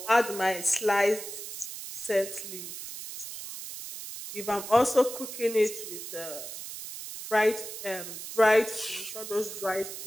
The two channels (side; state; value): right; noise; hiss, 9 dB below the sound